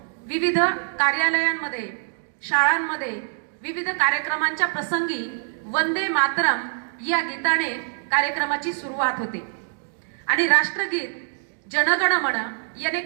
विविध कार्यालयांमध्ये, शाळांमध्ये विविध कार्यक्रमांच्या प्रसंगी वंदे मातरम या गीताने कार्यक्रमाची सुरुवात होते आणि राष्ट्रगीत जनगण मन याने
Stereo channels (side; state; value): left; silent; digital silence